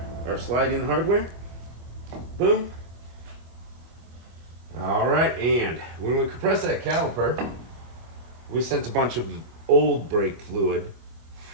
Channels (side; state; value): left; late; 25 ms